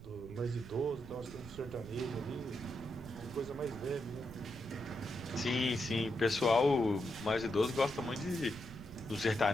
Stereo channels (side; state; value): right; noise; rumble, 15 dB below the sound